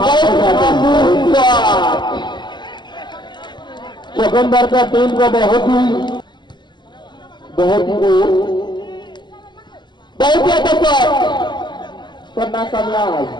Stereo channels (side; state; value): right; late; 0.21 ms